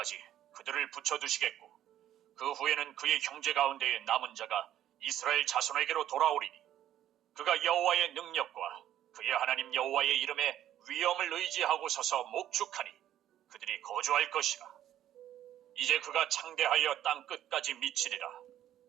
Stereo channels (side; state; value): left; quieter; 11.8 dB